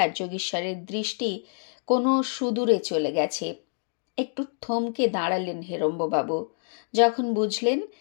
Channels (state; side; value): silent; right; 60 dB below the other